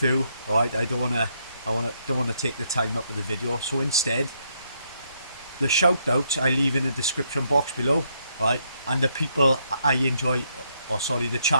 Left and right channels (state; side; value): inverted; both; correlation -0.75